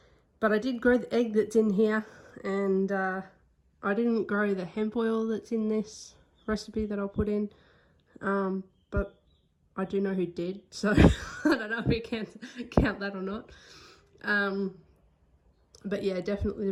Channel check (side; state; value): both; identical; correlation 1.00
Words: But I did grow the egg that's in here. And I didn't grow the hemp oil that's in this recipe that I'll put in. But I do know who did. So I don't know if we can count that or not. But yeah,